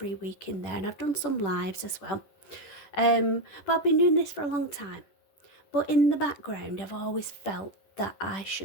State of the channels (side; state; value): right; late; 10 ms